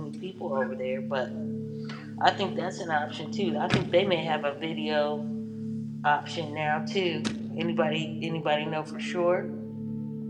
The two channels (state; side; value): identical; both; correlation 1.00